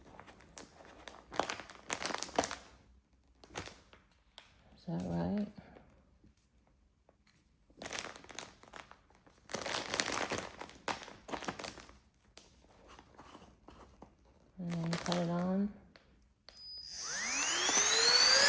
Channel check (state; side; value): identical; both; correlation 1.00